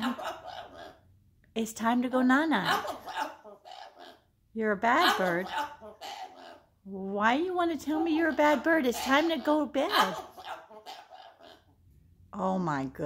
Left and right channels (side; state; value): both; identical; correlation 1.00